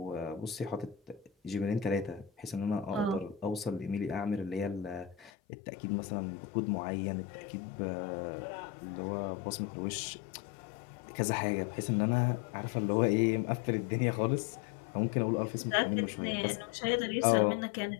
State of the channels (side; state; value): right; drops out; at 5.3 s